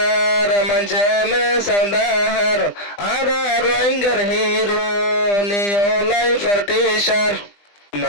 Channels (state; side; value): late; right; 20 ms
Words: মঞ্চে মে সৌদাহার আরা রোহিঙ্গার হিরো নিওলাই ফরটিশার